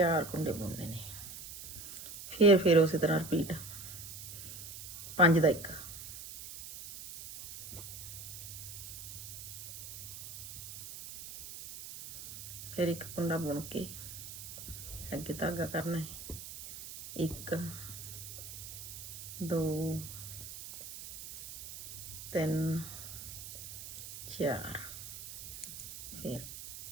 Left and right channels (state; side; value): noise; right; hiss, 11 dB below the sound